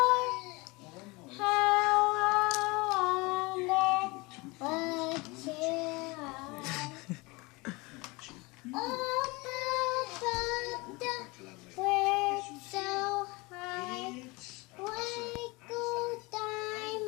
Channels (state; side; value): quieter; right; 24.9 dB